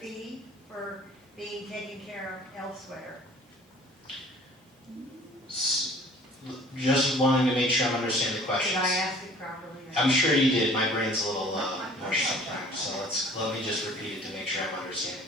for being taken care of elsewhere? Just wanting to make sure I'm understanding the questions. Did I ask it properly? I'm sure you did. My brain's a little mush sometimes, so let me just repeat it to make sure I'm understanding.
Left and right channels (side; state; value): both; normal; correlation 0.51